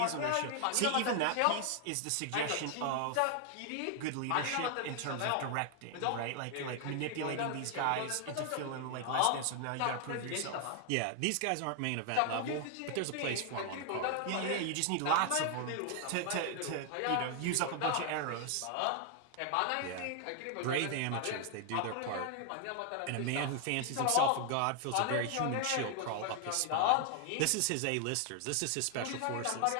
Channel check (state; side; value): different; both; correlation 0.00